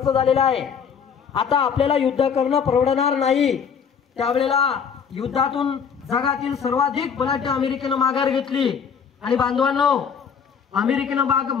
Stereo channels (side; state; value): right; quieter; 6.9 dB